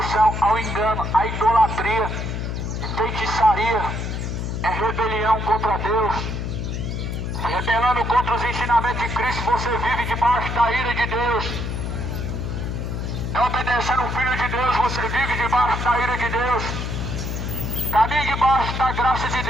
ao engano, a idolatria, feitiçaria, é rebelião contra Deus. Rebelando contra os ensinamentos de Cristo, você vive debaixo da ira de Deus. Não obedecendo o Filho de Deus, você vive debaixo da ira de Deus. Caminhe debaixo da graça de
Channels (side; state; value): left; noise; hum, 3 dB below the sound